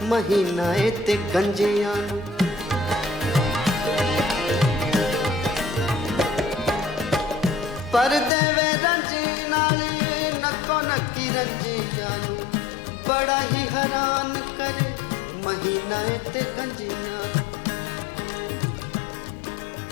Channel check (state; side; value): drops out; right; at 8.3 s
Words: ਮਹੀਨਾ ਏ ਤੇ ਗੰਜਿਆਂ ਨੂੰ ਪਰ ਦੇਵੇ ਰੰਜ ਨਾਲ ਨੱਕੋ ਨੱਕੀ ਰੰਜਿਆਂ ਨੂੰ ਬੜਾ ਹੀ ਹੈਰਾਨ करे महीना ते गंजियां।